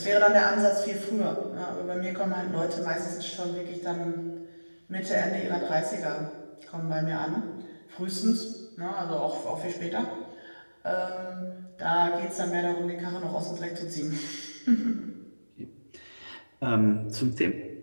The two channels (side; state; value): both; inverted; correlation -1.00